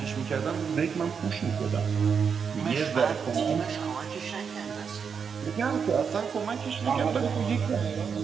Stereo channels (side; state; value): left; quieter; 6.4 dB